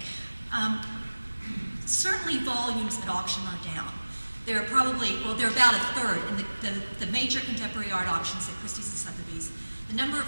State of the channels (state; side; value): inverted; both; correlation -1.00